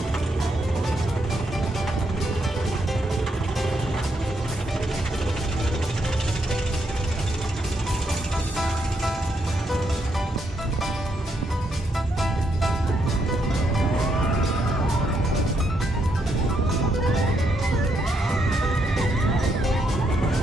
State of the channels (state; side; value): normal; both; correlation 0.77